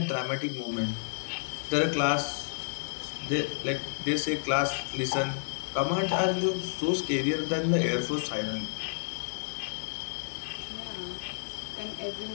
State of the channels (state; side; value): silent; right; digital silence